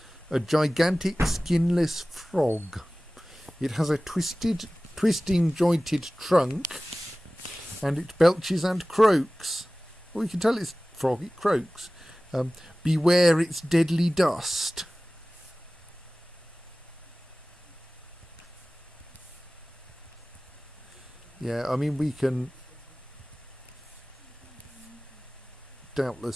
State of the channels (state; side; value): normal; both; correlation 0.97